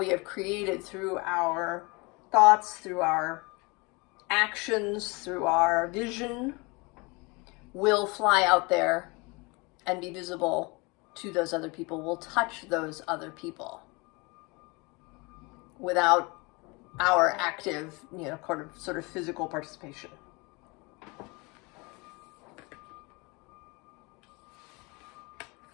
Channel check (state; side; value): quieter; right; 27.2 dB